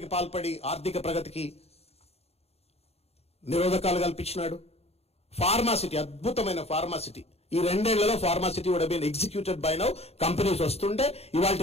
పాల్పడి ఆర్థిక ప్రగతికి నిరోధకాలు కల్పించినాడు. ఫార్మాసిటీ, అద్భుతమైన ఫార్మాసిటీ, ఈ 2 ఏళ్లలో pharma city would been executed by now. Companies వస్తుంటే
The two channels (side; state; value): right; late; 0.30 ms